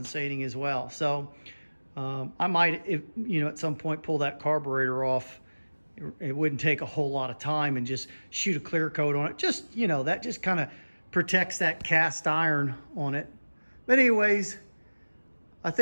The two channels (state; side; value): inverted; both; correlation -1.00